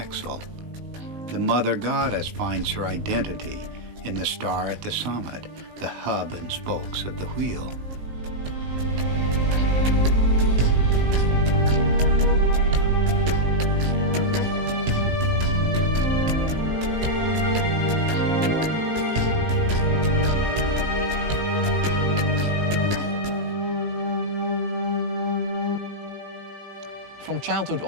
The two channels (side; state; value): left; late; 19 ms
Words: The mother goddess finds her identity in the star at the summit, the hub and spokes of the wheel. From childhood